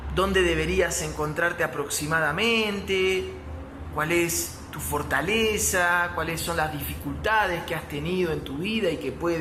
dónde deberías encontrarte aproximadamente, cuál es tu fortaleza, cuáles son las dificultades que has tenido en tu vida y que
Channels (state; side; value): identical; both; correlation 1.00